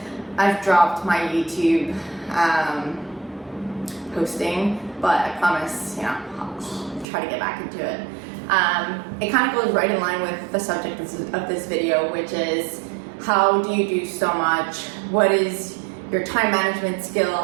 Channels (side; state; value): left; drops out; at 7.1 s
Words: I've dropped my YouTube posting, but I promise, I'll try to get back into it. It kind of goes right in line with the subject of this video, which is how do you do so much? What is your time management